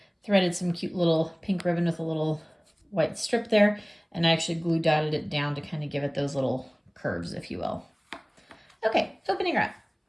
threaded some cute little pink ribbon with a little white strip there, and I actually glue dotted it down to kind of give it those little curves, if you will. Okay, opening her up.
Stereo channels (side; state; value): both; identical; correlation 1.00